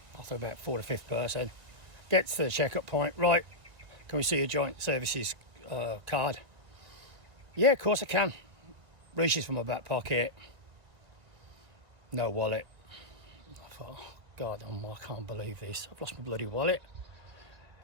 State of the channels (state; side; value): late; left; 1.6 ms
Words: after about 4th or 5th person, gets to the checkup point. Right, can we see your joint services card? Yeah, of course I can. Reaches for my back pocket. No wallet. I thought, oh, God, I can't believe this. I've lost my bloody wallet.